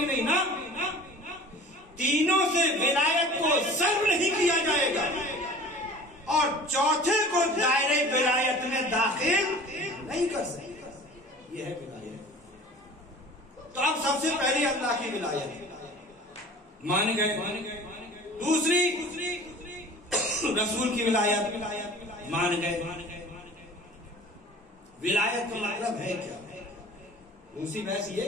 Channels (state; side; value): normal; both; correlation 0.43